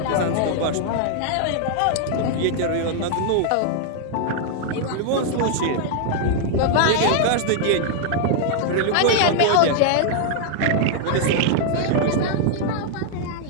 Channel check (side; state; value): both; different; correlation -0.01